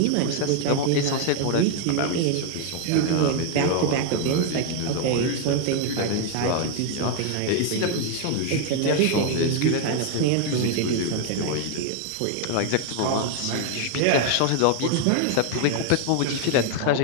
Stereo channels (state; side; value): different; both; correlation 0.00